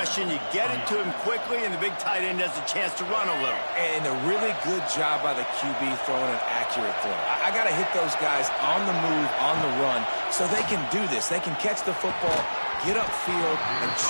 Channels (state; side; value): inverted; both; correlation -1.00